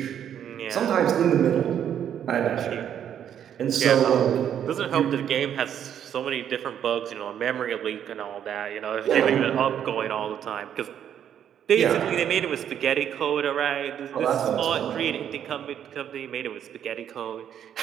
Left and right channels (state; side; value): quieter; left; 9.5 dB